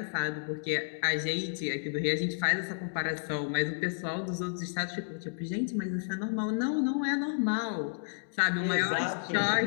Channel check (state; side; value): silent; right; digital silence